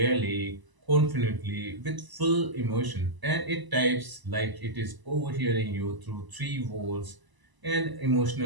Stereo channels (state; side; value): late; left; 1.0 ms